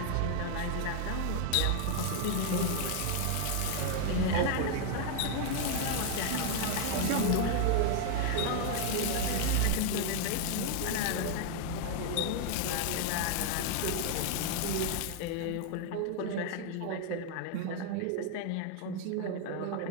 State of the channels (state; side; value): different; both; correlation 0.00